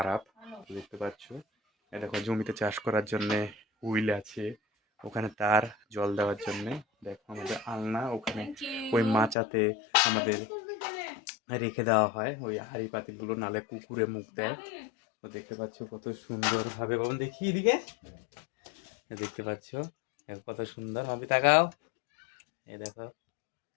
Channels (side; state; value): right; drops out; at 9.3 s